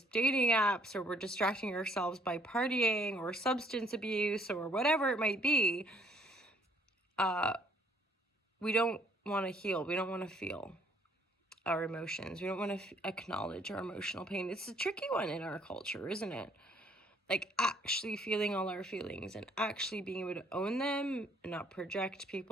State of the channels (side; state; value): both; normal; correlation 0.63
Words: dating apps, or we're distracting ourselves by partying or substance abuse or whatever it might be, we don't want to heal. We don't want to feel our emotions. We don't want to acknowledge our emotional pain. It's a tricky one in our culture, isn't it? Like actually feeling all our feelings and actually being able to own them and not project